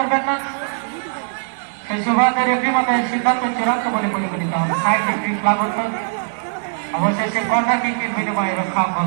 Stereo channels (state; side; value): silent; left; 66 dB below the other